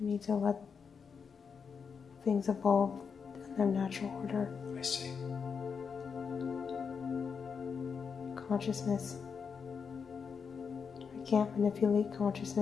need to let things evolve in their natural order. I see. Consciousness. I can't manipulate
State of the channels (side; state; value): right; quieter; 6.0 dB